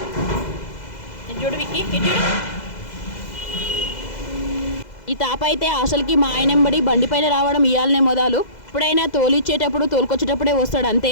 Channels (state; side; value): late; right; 2.0 ms